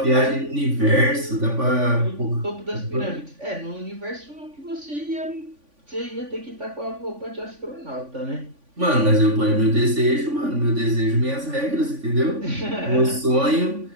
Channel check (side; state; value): left; late; 3.5 ms